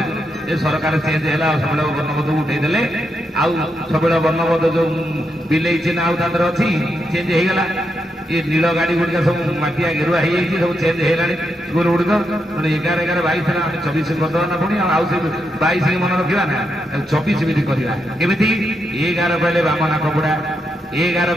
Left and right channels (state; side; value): normal; both; correlation 0.83